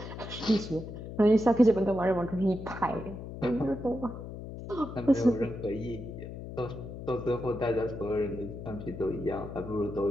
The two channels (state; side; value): noise; left; hum, 10 dB below the sound